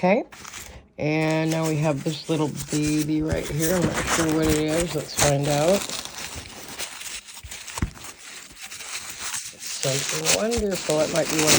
And now we have this little baby right here. I'm not sure what it is. Let's find out. Something wonderful. It might be one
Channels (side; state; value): both; identical; correlation 1.00